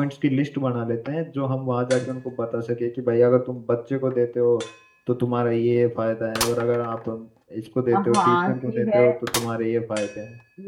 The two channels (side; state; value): both; identical; correlation 1.00